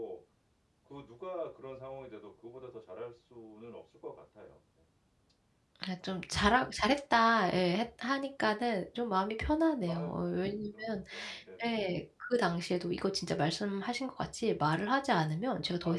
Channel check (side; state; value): both; identical; correlation 1.00